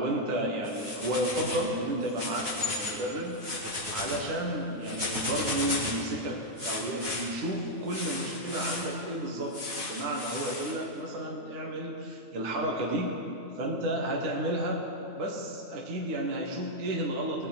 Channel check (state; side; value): late; left; 9.3 ms